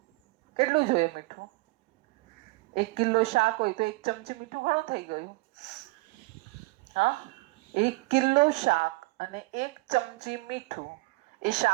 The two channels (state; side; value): quieter; left; 23.5 dB